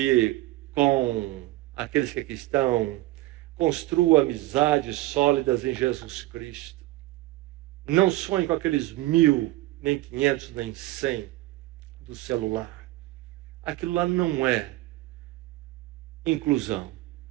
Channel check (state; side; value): quieter; left; 17.9 dB